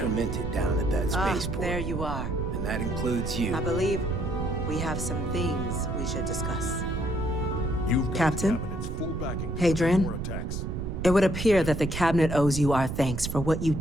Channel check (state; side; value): noise; right; rumble, 4 dB below the sound